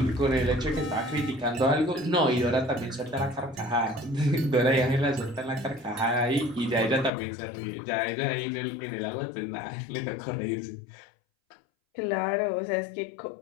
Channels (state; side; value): drops out; right; at 7.1 s